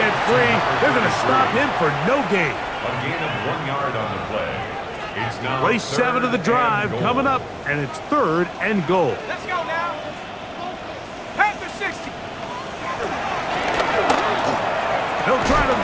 free. They're going to stop him for no gain. A gain of 1 yard on the play. It's now Play 7 of the drive coming up, and it's 3rd and goal. Let's go now. Head to 60. He'll try to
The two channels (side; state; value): both; identical; correlation 1.00